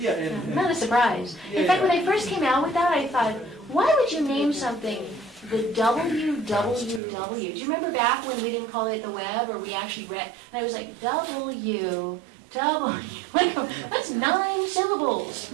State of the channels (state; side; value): drops out; left; at 7.0 s